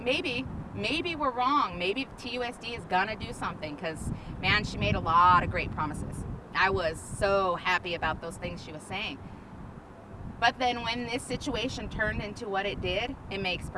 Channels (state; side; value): identical; both; correlation 1.00